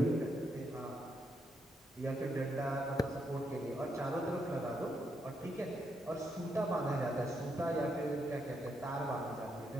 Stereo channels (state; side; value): normal; both; correlation 0.79